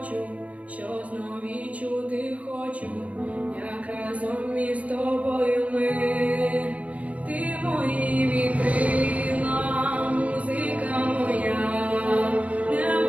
що знов відчути хочу, як разом із тобою ми. Ти мої вітрила, музика моя,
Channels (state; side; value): late; left; 0.067 ms